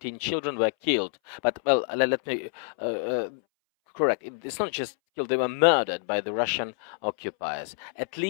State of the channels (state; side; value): silent; right; 60 dB below the other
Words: children were killed. But, well, let me correct. It's not just killed, they were murdered by the Russian occupiers. At